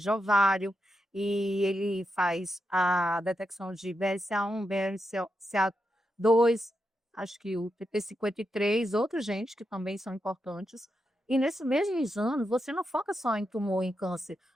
ovário, e ele faz a detecção de BRCA1, BRCA2, acho que o TP53, outros genes que também são importantes. E nesse mesmo exame, você não foca só em tumor, em câncer,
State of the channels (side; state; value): both; normal; correlation 0.86